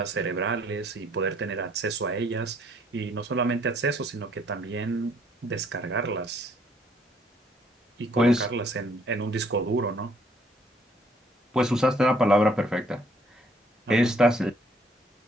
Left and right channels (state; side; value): normal; both; correlation 0.64